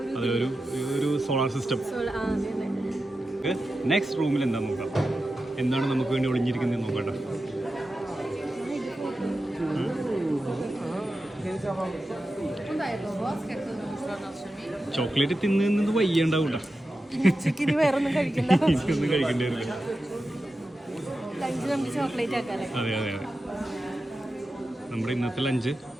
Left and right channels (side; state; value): both; normal; correlation 0.92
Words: ഒരു സോളാർ സിസ്റ്റം. നെക്സ്റ്റ് റൂമിൽ എന്താ നോക്കാം, എന്താണ് നമുക്ക് വേണ്ടി ഒളിഞ്ഞിരിക്കുന്നത് നോക്കട്ടെ. ചോക്ലേറ്റ് തിന്നത് വയ്യണ്ടാവൂട്ട. വേറൊന്നും കഴിക്കണ്ട. ഒന്നും കഴിക്കേണ്ടി വരില്ല. അതെ അതെ അതെ, നമ്മുടെ ഇന്നത്തെ ലഞ്ച്